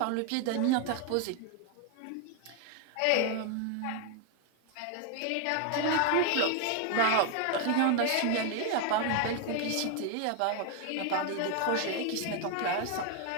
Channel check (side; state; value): both; different; correlation 0.01